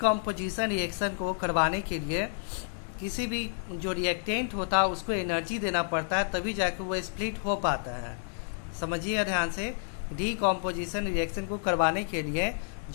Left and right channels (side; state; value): right; silent; digital silence